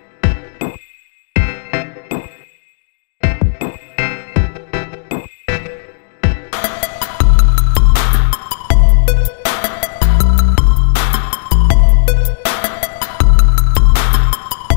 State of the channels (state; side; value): silent; right; digital silence